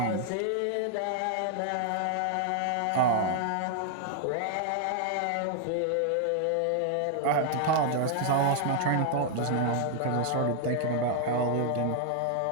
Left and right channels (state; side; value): different; both; correlation 0.00